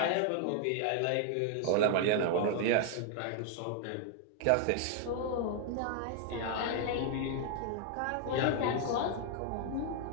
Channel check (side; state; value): both; different; correlation 0.00